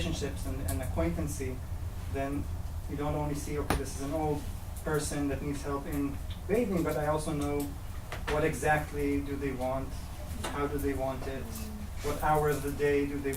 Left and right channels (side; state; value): both; identical; correlation 1.00